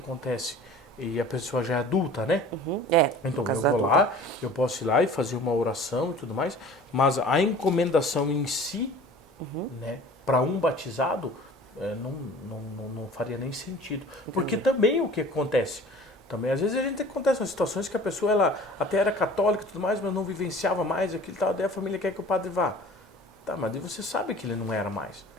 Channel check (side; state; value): both; normal; correlation 0.45